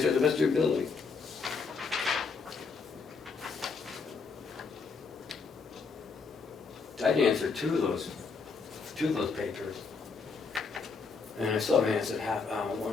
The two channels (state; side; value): quieter; right; 4.9 dB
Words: it the best of your ability. I'd answer two of those papers. And I still haven't answered